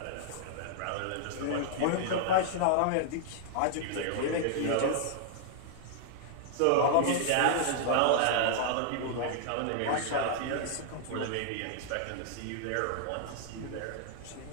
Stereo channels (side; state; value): both; different; correlation -0.01